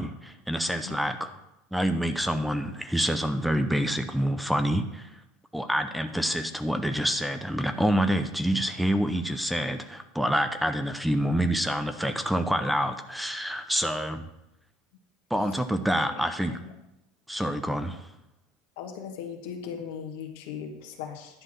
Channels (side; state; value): both; normal; correlation 0.87